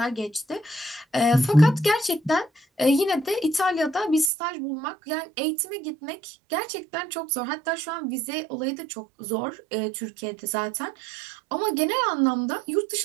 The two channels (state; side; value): drops out; left; at 4.3 s